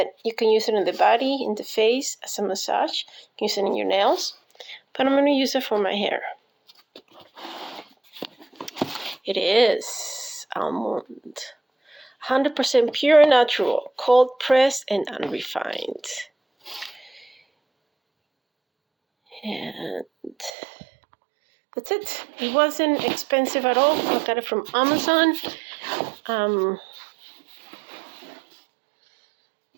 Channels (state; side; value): drops out; left; at 20.5 s